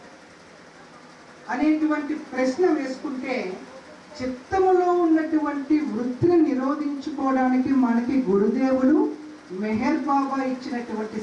అనేటువంటి ప్రశ్న వేసుకుంటే, చిత్తములో ఉన్నటువంటి వృత్తిని నిరోధించుకోవడానికి మనకి గురుదేవులు మెహర్ బాబా ఇచ్చినటువంటి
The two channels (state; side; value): identical; both; correlation 1.00